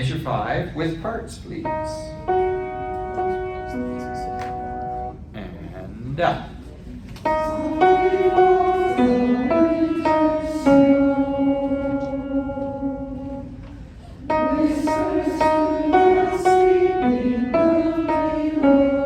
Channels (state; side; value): identical; both; correlation 1.00